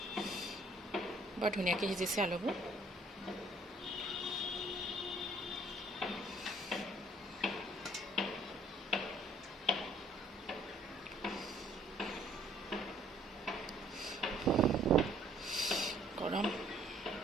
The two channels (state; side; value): normal; both; correlation 0.61